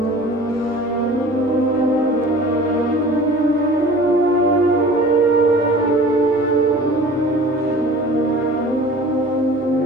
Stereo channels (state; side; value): normal; both; correlation 0.43